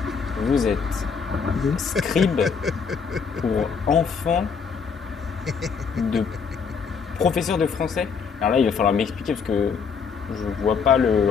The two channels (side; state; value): right; quieter; 5.9 dB